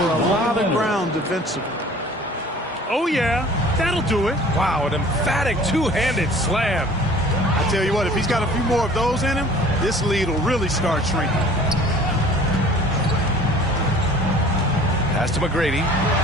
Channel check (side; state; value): both; normal; correlation 0.48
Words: lot of ground defensively. Oh, yeah. That'll do it. Wow, an emphatic two-handed slam. I tell you what, if he's got a few more of those in him, this lead will really start shrinking. Pass to McGrady.